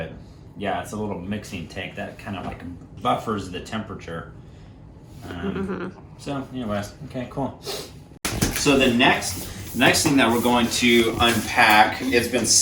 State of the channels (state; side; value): identical; both; correlation 1.00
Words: yeah, it's a little mixing tank that kind of like buffers the temperature. So anyways, okay, cool. So the next thing that we're going to unpack, it's been